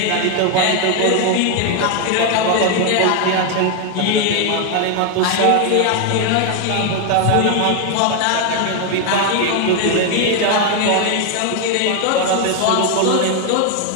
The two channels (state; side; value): different; both; correlation 0.01